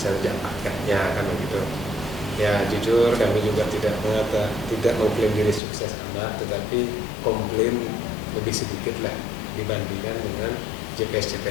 saja paketnya, kan begitu. Ya jujur kami juga tidak mengklaim diri sukses amat, tetapi komplain lebih sedikit lah dibandingkan dengan JPS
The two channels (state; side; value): drops out; right; at 5.6 s